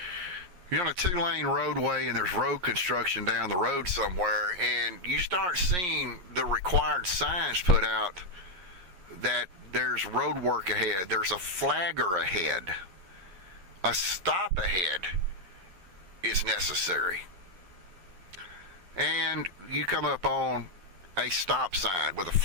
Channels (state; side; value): late; left; 11 ms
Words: You're on a 2-lane roadway and there's road construction down the road somewhere, and you start seeing the required signs put out that there's road work ahead, there's a flagger ahead, a stop ahead is necessary. And you come up on a stop sign with a